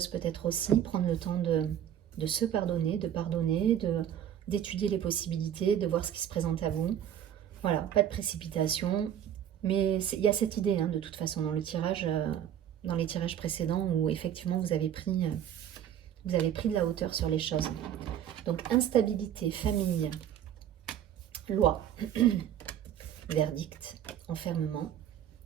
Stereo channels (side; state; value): left; quieter; 10.1 dB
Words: peut-être aussi, prendre le temps de se pardonner, d'étudier les possibilités, de voir ce qui se présente à vous. Voilà, pas de précipitation. Mais il y a cette idée, hein, de toute façon, dans les tirages précédents, où effectivement vous avez pris de la hauteur sur les choses. Donc, instabilité, famille, loi, verdict, enfermement,